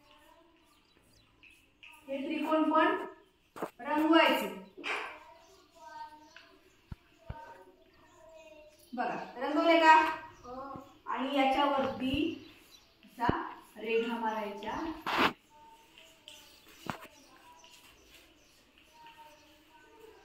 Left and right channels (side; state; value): both; identical; correlation 1.00